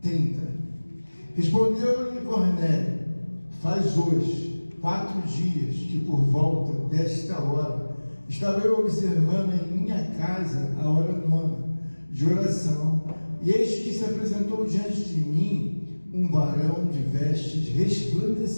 Respondeu-lhe Cornélio: faz hoje 4 dias que por volta desta hora estava eu observando em minha casa a hora 9 de oração, e eis que se apresentou diante de mim um varão de vestes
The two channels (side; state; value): both; inverted; correlation -1.00